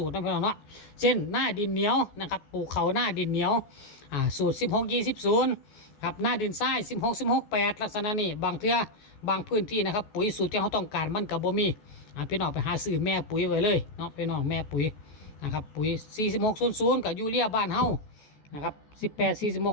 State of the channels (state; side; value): late; right; 14 ms